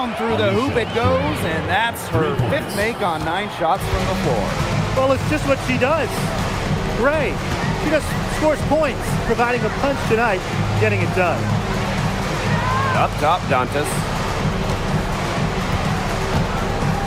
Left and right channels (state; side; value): identical; both; correlation 1.00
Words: through the hoop it goes, and that's her 5th make on 9 shots from the floor. Well, it's just what she does. Gray, she just scores points, providing a punch tonight, getting it done. Up top, Dantas.